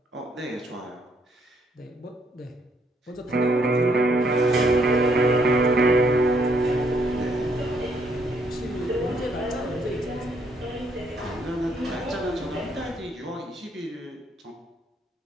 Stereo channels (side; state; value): both; normal; correlation 0.70